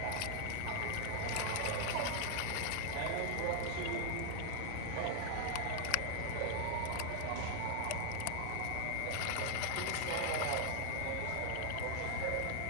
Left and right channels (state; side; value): different; both; correlation 0.00